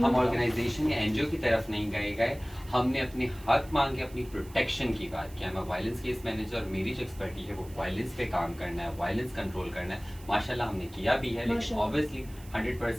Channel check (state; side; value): noise; right; hiss, 22 dB below the sound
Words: ऑर्गेनाइजेशन या एनजीओ की तरफ नहीं गए। हमने अपने हक मांगे, अपनी प्रोटेक्शन की बात किया। मैं वायलेंस केस मैनेजर, मेरी जो एक्सपर्टी है वो वायलेंस पे काम करना है, वायलेंस कंट्रोल करना है। माशाल्लाह हमने किया भी है, लेकिन ऑब्वियसली